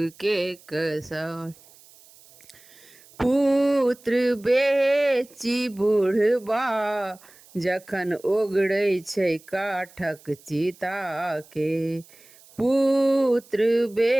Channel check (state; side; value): noise; right; hiss, 25 dB below the sound